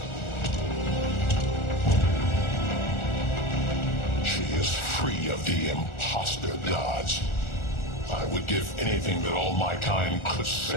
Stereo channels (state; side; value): late; right; 1.4 ms